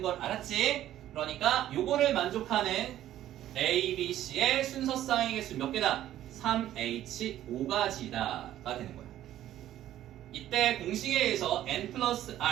걸 알았지? 그러니까 요거를 만족하는 A, B, C의 순서쌍의 개수 몇 개다? 3H5가지다가 되는 거야. 이때 공식에 의해서 n 플러스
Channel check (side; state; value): left; quieter; 12.6 dB